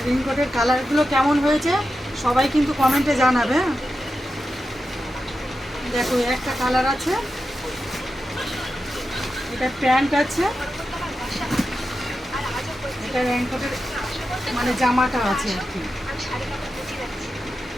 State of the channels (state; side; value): normal; both; correlation 0.90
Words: রেইনকোটের কালারগুলো কেমন হয়েছে সবাই কিন্তু কমেন্টে জানাবে। দেখো, একটা কালার আছে, এটা প্যান্ট আছে, এটা রেইনকোটের মানে জামাটা আছে আর কি।